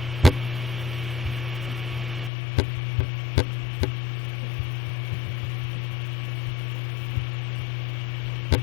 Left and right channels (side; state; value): right; drops out; at 2.3 s